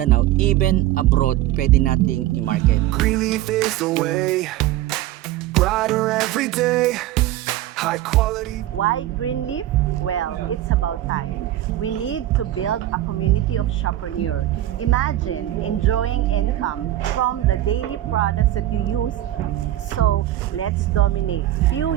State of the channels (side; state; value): left; quieter; 14.0 dB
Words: even abroad, pwede nating i-market. Greenleaf is the way, brighter every day, high quality. Why Greenleaf? Well, it's about time. We need to build a community of shoppreneur. Imagine enjoying income from the daily products that you use. So, let's dominate. Few